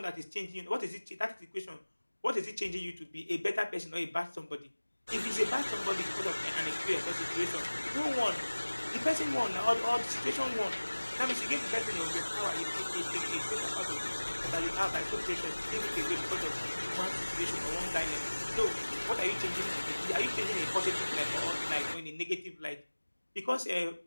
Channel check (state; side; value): inverted; both; correlation -1.00